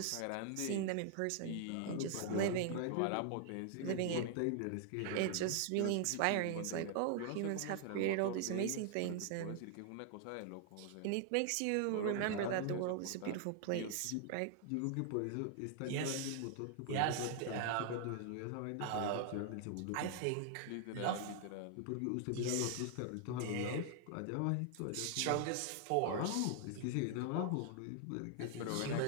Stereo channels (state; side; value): different; both; correlation 0.00